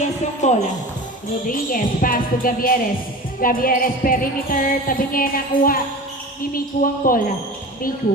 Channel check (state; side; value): normal; both; correlation 0.34